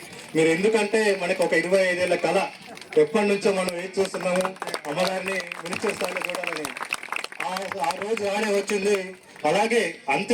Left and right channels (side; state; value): both; identical; correlation 1.00